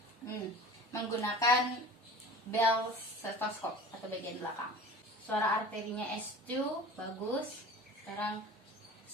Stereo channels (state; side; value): normal; both; correlation 0.39